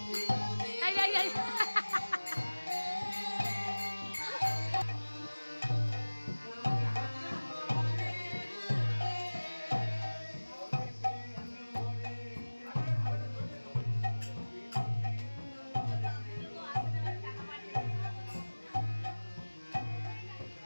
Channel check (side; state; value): both; inverted; correlation -1.00